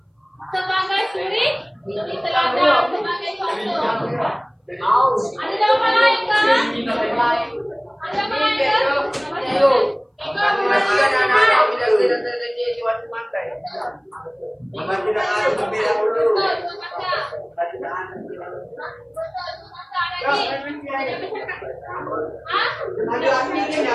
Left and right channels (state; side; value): identical; both; correlation 1.00